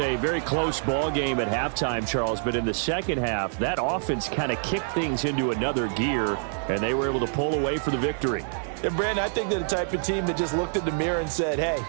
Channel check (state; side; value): silent; left; 61 dB below the other